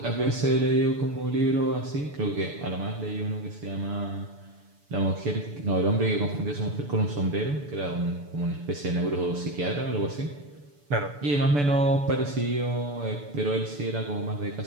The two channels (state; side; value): late; left; 6.9 ms